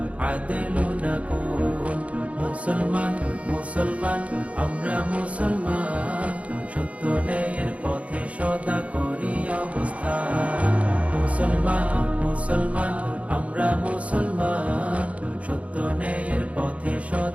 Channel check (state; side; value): late; left; 0.065 ms